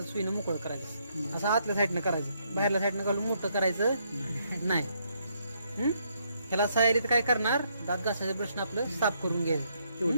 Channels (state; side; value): inverted; both; correlation -0.73